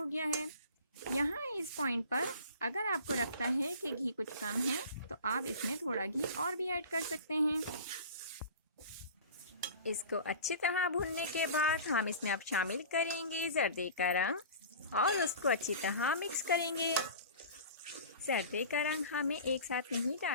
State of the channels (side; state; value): both; inverted; correlation -0.39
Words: गया है। यहाँ इस पॉइंट पर अगर आपको लगता है कि घी कुछ कम है तो आप इसमें थोड़ा घी और भी ऐड कर सकते हैं। इसको अच्छी तरह भूनने के बाद हम इसमें अब शामिल करेंगे जर्दे का रंग और उसको अच्छी तरह मिक्स करेंगे। जर्दे का रंग हमें एक साथ नहीं